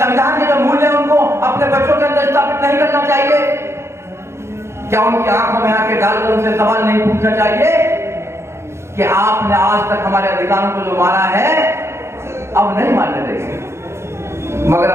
के जो मूल्य हैं उनको अपने बच्चों के अंदर स्थापित नहीं करना चाहिए? क्या उनकी आंखों में आके डालकर उनसे सवाल नहीं पूछना चाहिए कि आपने आज तक हमारे अधिकारों को जो मारा है अब नहीं मानने देंगे? मगर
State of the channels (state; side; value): late; left; 0.13 ms